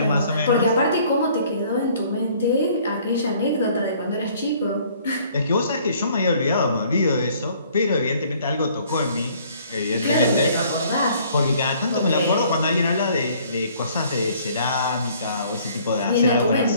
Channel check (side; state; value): both; inverted; correlation -0.58